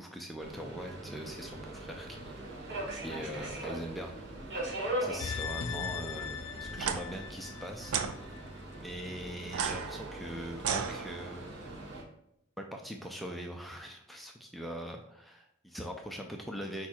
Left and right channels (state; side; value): normal; both; correlation 0.27